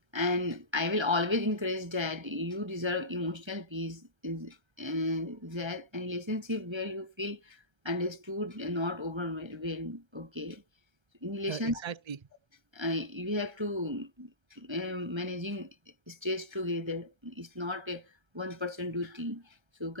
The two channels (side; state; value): left; late; 1.3 ms